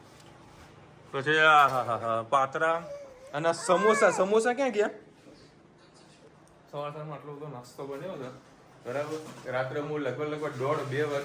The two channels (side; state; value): both; identical; correlation 1.00